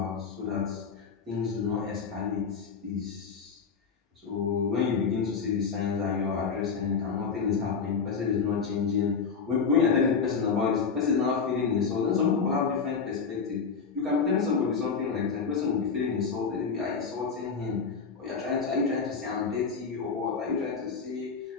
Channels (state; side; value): quieter; right; 5.6 dB